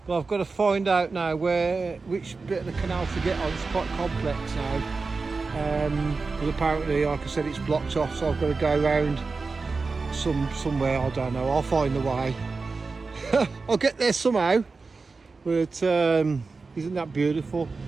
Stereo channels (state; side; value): quieter; left; 4.2 dB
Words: But I've got to find out now which bit of the canal to get on. It's quite complex now. But apparently, like I said, it's blocked off, so I've got to go around somewhere, I don't know. I'll find the way. I'll get there somehow. But isn't that beautiful?